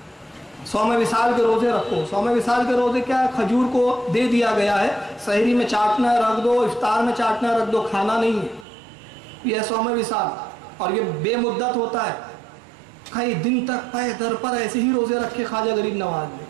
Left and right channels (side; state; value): left; drops out; at 8.7 s